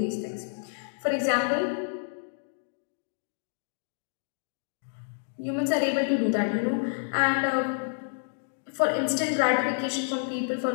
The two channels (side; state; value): right; silent; digital silence